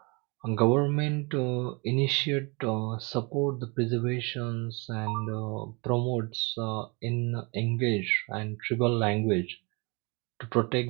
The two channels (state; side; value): quieter; left; 29.4 dB